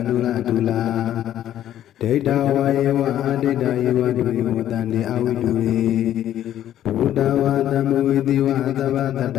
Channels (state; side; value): quieter; right; 11.6 dB